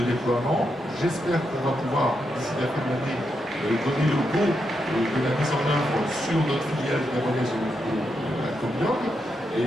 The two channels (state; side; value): normal; both; correlation 0.83